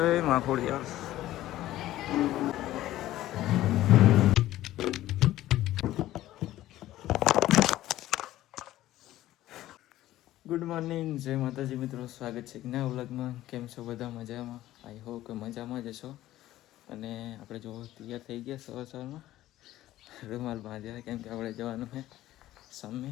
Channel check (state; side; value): quieter; right; 14.7 dB